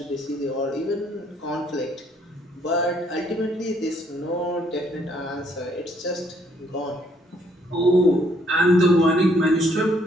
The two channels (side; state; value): both; normal; correlation 0.67